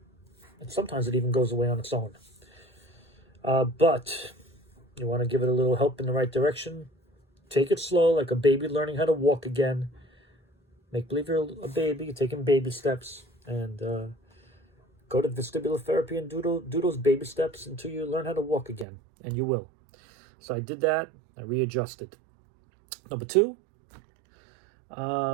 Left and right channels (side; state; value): left; drops out; at 18.9 s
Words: and sometimes it even goes away on its own. But you want to give it a little help in the right direction. Take it slow, like a baby learning how to walk again. Make believe you're a baby, you're taking baby steps, and go to vestibular therapy and do those baby steps until you learn how to walk again, and you will. So I did that. I readjusted. Number 2,